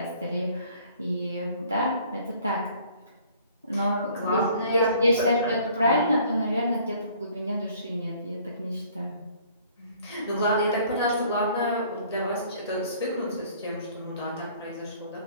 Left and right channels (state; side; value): inverted; both; correlation -0.56